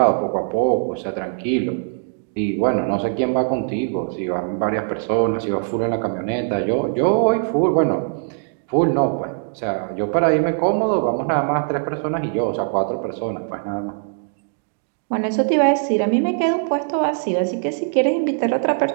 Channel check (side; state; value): left; silent; digital silence